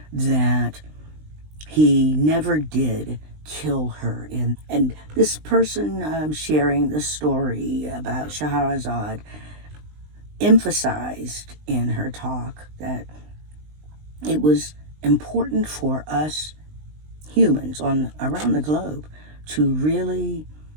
that he never did kill her. And this person sharing the story about Scheherazade emphasized in her talk that it was important for us humans around the globe to really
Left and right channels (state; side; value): late; left; 20 ms